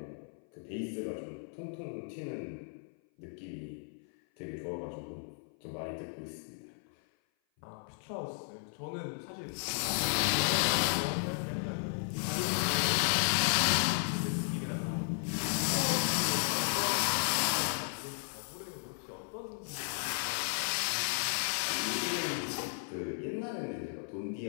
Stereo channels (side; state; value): right; silent; 55 dB below the other